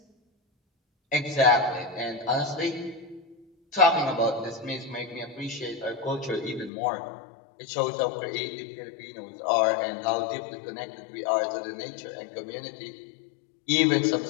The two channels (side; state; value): right; drops out; at 6.7 s